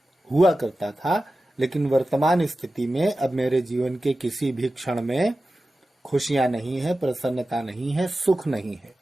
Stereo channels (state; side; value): normal; both; correlation 0.94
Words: हुआ करता था, लेकिन वर्तमान स्थिति में अब मेरे जीवन के किसी भी क्षण में खुशियां नहीं है, प्रसन्नता नहीं है, सुख नहीं है।